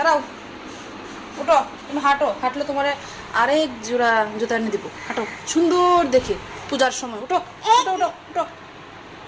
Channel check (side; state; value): both; identical; correlation 1.00